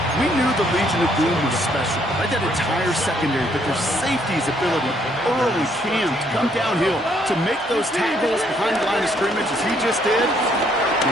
We knew the Legion of Boom was special. Right, that entire secondary, but their safety's ability early Cam to come downhill to make those tackles behind the line of scrimmage as he just did.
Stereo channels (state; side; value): normal; both; correlation 0.68